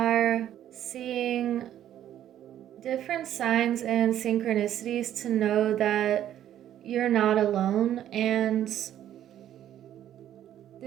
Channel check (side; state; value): left; quieter; 11.3 dB